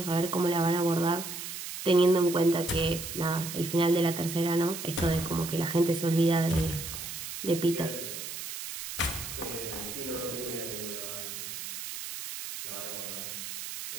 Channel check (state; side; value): noise; right; hiss, 8 dB below the sound